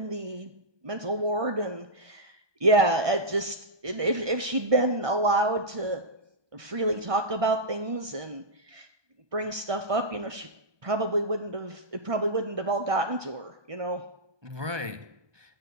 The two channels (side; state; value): left; late; 1.2 ms